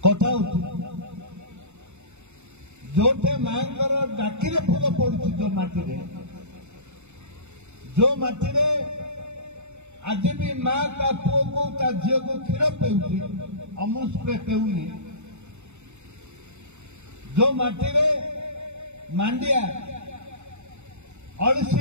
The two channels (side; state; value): left; late; 0.83 ms